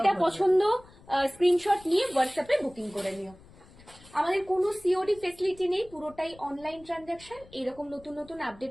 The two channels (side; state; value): left; noise; rumble, 23 dB below the sound